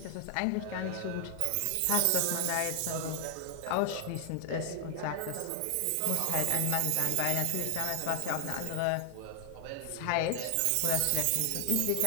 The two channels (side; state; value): both; different; correlation 0.00